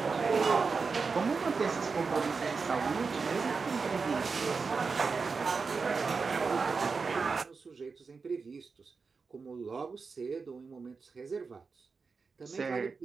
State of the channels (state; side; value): quieter; left; 4.8 dB